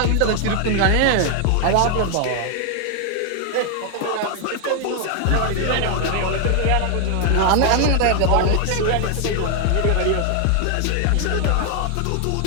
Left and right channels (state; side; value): different; both; correlation 0.00